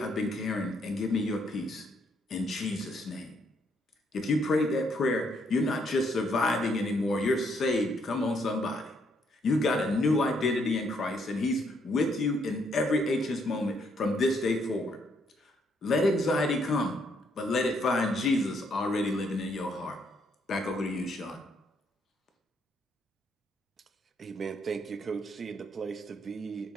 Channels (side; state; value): both; normal; correlation 0.72